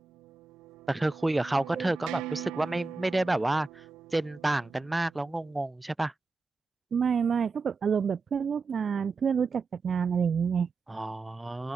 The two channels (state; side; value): quieter; left; 4.0 dB